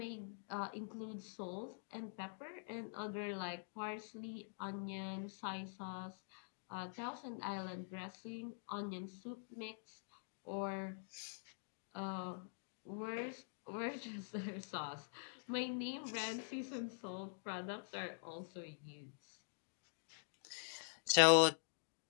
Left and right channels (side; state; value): right; silent; digital silence